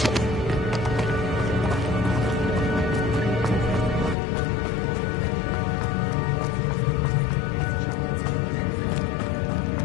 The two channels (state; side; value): drops out; right; at 4.2 s